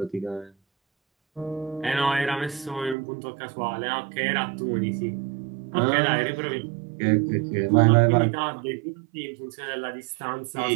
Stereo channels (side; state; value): left; drops out; at 3.0 s